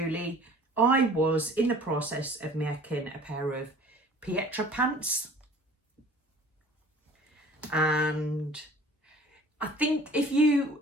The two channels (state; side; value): normal; both; correlation 0.48